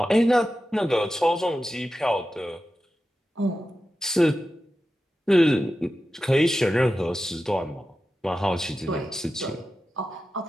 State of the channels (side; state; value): both; normal; correlation 0.92